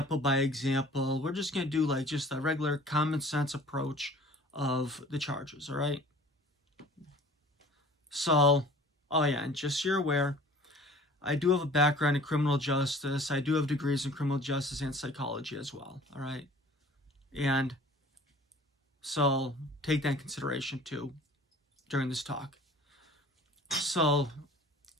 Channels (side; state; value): both; normal; correlation 0.48